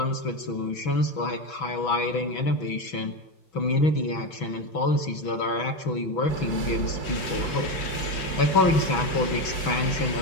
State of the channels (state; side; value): late; right; 6.2 ms